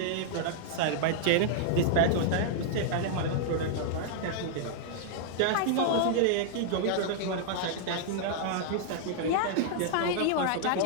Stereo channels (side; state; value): both; different; correlation -0.01